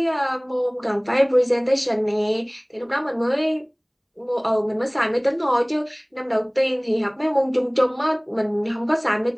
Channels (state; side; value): identical; both; correlation 1.00